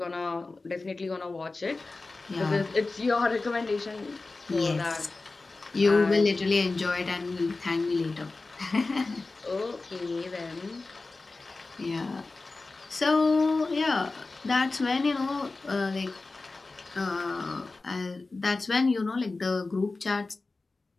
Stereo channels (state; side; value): quieter; right; 3.5 dB